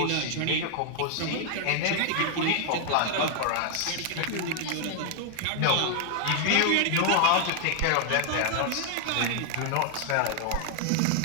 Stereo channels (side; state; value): both; different; correlation 0.00